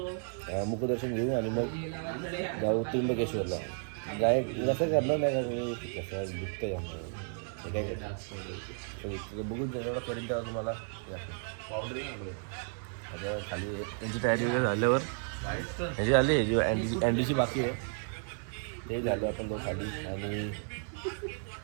मुखदर्शन घेऊ आणि मग जाऊ त्र्यंबकेश्वरला जाय कसं करणार नाही का मी कसं दुखतं जाणार हे काय करतो बघून एवढं करीन तेव्हा तुम्हाला आता खाली त्यांची तयारी वगैरे झाल्यावर ह्याची झाली जी अँडीची बाकी आहे ते झालं आपण तो खाली आणि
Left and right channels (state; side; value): silent; left; 56 dB below the other